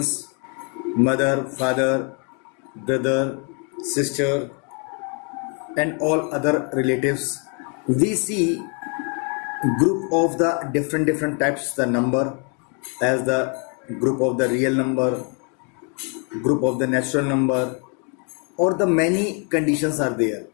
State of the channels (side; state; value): right; quieter; 37.8 dB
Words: mother, father, brother, sister, and all other relatives. We see group of the different types, the number as the group of the real number, group of the natural number, or the many conditions are there.